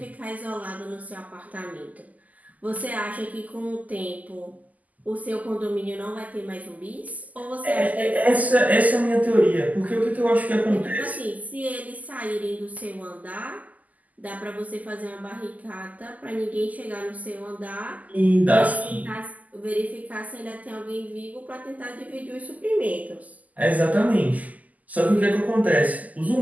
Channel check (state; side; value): late; left; 0.078 ms